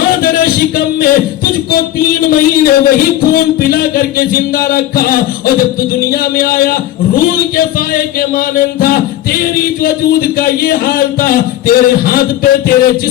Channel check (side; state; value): right; quieter; 13.6 dB